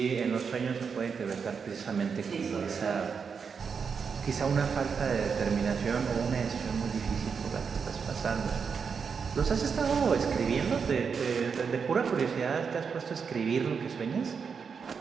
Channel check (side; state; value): left; quieter; 6.0 dB